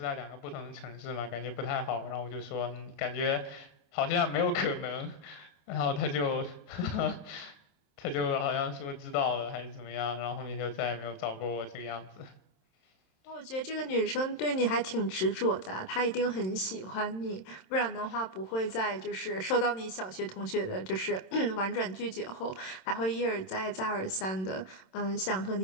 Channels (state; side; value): late; right; 27 ms